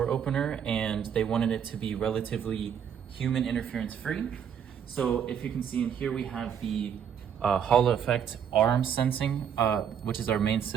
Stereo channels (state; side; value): quieter; left; 8.2 dB